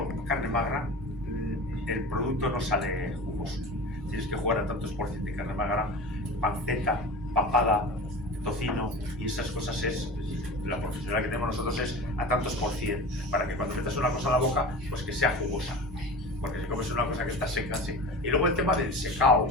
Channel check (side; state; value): both; normal; correlation 0.33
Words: carne magra, el producto no sale jugoso. Tienes que jugar a tantos por ciento de carne magra, panceta, papada, tocino, y esas cosas es, la profesional que tenemos nosotros es a tantos por cien, para que cuando metas una cosa en la boca, pues que sea jugosa, porque si comes una cosa que está seca, sí. Y luego el tema del secao.